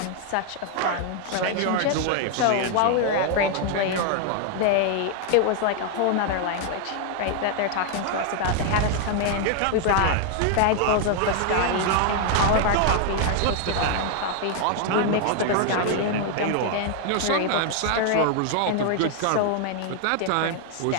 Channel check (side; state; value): both; different; correlation 0.00